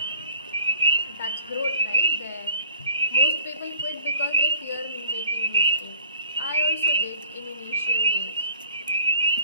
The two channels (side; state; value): both; inverted; correlation -0.54